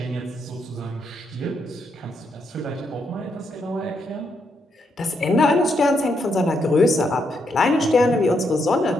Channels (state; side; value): normal; both; correlation 0.78